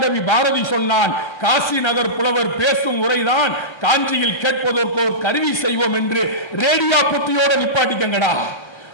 பாரதி சொன்னான், காசி நகர் புலவர் பேசும் உரைதான் காஞ்சியில் கேட்பதற்கு ஒரு கருவி செய்வோம் என்று. ரேடியோ புத்தியோட நிப்பாட்டிக்கங்கடா.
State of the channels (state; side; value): late; right; 1.3 ms